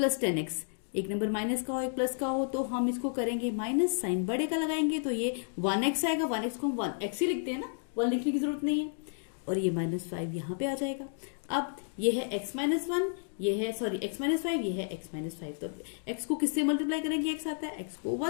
10x, एक नंबर माइनस का हो एक प्लस का हो तो हम इसको करेंगे माइनस, साइन बड़े का लगाएंगे तो ये 1x आएगा, 1x को हम 1x ही लिखते हैं ना, 1 लिखने की जरूरत नहीं है, और ये -5 यहाँ पे आ जाएगा। अब ये है x - 1, ये है सॉरी x - 5, ये है x - 5, तो x को किससे मल्टीप्लाई करेंगे, x आता है, x को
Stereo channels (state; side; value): silent; right; digital silence